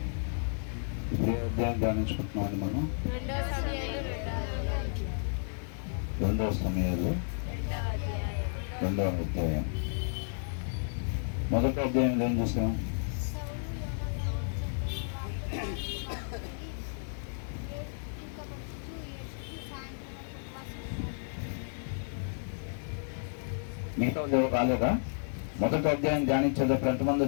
ఇప్పుడు అధ్యాయం ధ్యానించుకుంటున్నామండి మనం. 2వ సమయాలు 2వ అధ్యాయం. మొదటి అధ్యాయంలో ఏం చూసాం? మిగతా ఎవరు రాలేదా? మొదటి అధ్యాయం ధ్యానించేటప్పుడు ఎంతమంది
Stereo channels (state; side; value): silent; right; digital silence